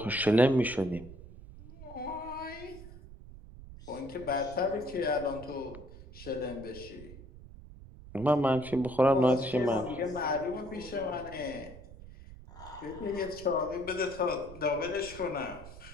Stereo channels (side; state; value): right; noise; rumble, 16 dB below the sound